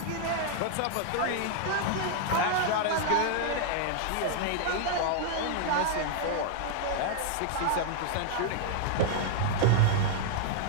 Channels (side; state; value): both; different; correlation 0.00